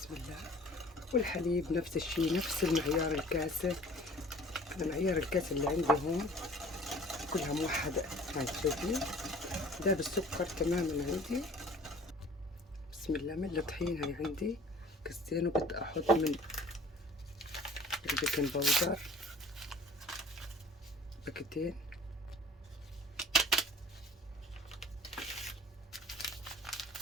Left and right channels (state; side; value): normal; both; correlation 0.49